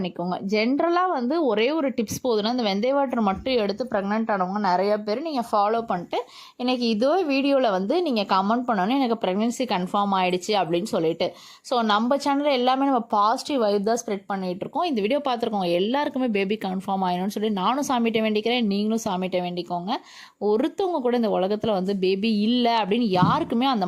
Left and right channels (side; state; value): both; identical; correlation 1.00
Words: ஜென்ரலாக வந்து ஒரே ஒரு டிப்ஸ் போதுன்னா இந்த வெந்தய வாட்டர் மட்டும் எடுத்து ப்ரெக்னென்ட் ஆனவங்க நிறைய பேர் நீங்கள் ஃபாலோ பண்ணிட்டு இன்றைக்கி இதே வீடியோவில் வந்து நீங்கள் கமெண்ட் பண்ணணும் எனக்கு ப்ரெக்னென்சி கன்ஃபார்ம் ஆகிடுச்சு அப்படின்னு சொல்லிட்டு. ஸோ நம்ம சேனலில் எல்லாமே நம்ம பாசிட்டிவ் வைப் தான் ஸ்ப்ரெட் பண்ணிகிட்ருக்கோம். இந்த வீடியோ பார்த்துருக்கோங்க எல்லாருக்குமே பேபி கன்ஃபார்ம் ஆகிடும்னு சொல்லி நானும் சாமிகிட்ட வேண்டிக்கிறேன், நீங்களும் சாமிகிட்ட வேண்டிக்கோங்க. ஒருத்தவங்க கூட இந்த உலகத்தில் வந்து பேபி இல்லை அப்படின்னு யாருக்குமே